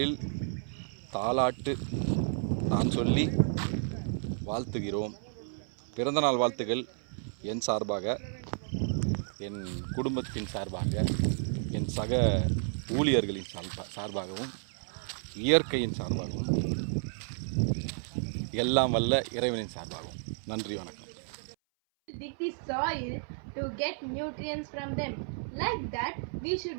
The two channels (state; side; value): silent; left; 57 dB below the other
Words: தாலாட்டு நான் சொல்லி வாழ்த்துகிறோம். பிறந்தநாள் வாழ்த்துக்கள் என் சார்பாக, என் குடும்பத்தின் சார்பாக, என் சக ஊழியர்களின் சார்பாகவும், இயற்கையின் சார்பாகவும், எல்லாம் வல்ல இறைவனின் சார்பாகவும். நன்றி, வணக்கம். Dig the soil to get nutrients from them. Like that, we